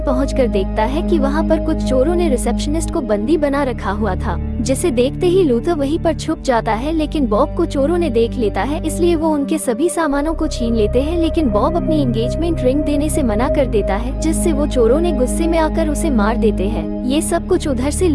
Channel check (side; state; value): both; identical; correlation 1.00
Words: पहुंचकर देखता है कि वहां पर कुछ चोरों ने रिसेप्शनिस्ट को बंदी बना रखा हुआ था, जिसे देखते ही लूथर वहीं पर छुप जाता है। लेकिन बॉब को चोरों ने देख लेता है, इसलिए वो उनके सभी सामानों को छीन लेते हैं। लेकिन बॉब अपनी एंगेजमेंट रिंग देने से मना कर देता है, जिससे वो चोरों ने गुस्से में आकर उसे मार देते हैं। ये सब कुछ उधर से